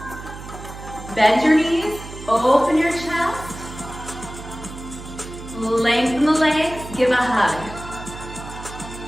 Bend your knees, open your chest. Lengthen the legs, give a hug.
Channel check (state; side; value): noise; right; hum, 12 dB below the sound